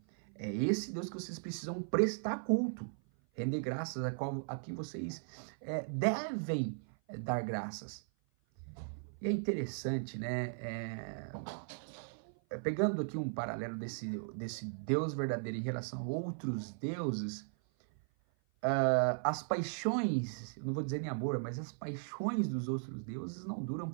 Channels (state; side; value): silent; left; 53 dB below the other